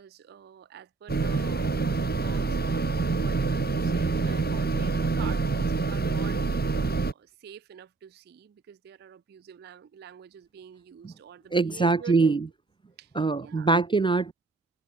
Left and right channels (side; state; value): left; quieter; 3.6 dB